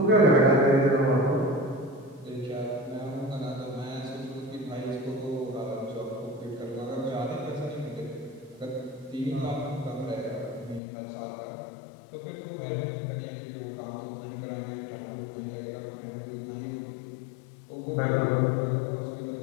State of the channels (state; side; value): drops out; right; at 10.8 s